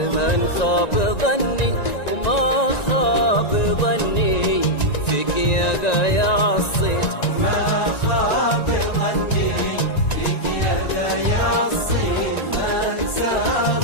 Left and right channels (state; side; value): late; right; 1.9 ms